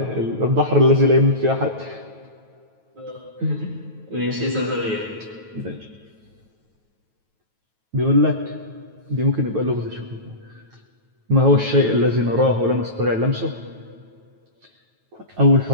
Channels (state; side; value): late; left; 9.2 ms